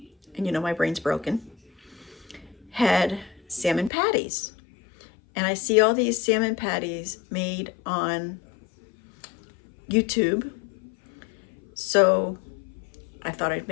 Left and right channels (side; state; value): right; drops out; at 3.9 s